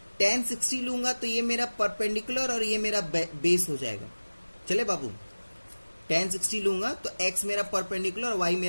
tan 60 लूंगा, तो ये मेरा परपेंडिकुलर और ये मेरा बेस हो जाएगा। चले बाबू, tan 60 लूंगा तो x मेरा परपेंडिकुलर और y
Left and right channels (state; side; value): inverted; both; correlation -1.00